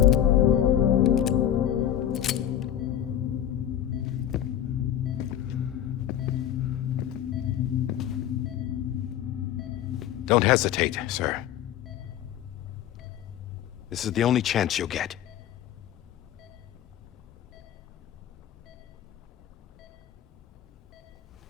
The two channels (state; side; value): quieter; right; 10.9 dB